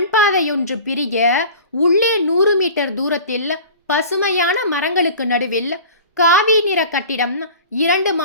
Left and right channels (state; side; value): inverted; both; correlation -0.40